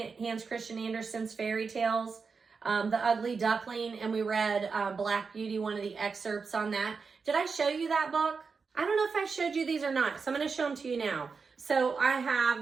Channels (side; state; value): left; quieter; 5.1 dB